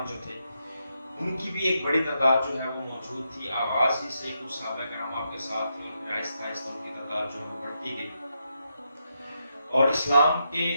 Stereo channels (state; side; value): inverted; both; correlation -0.82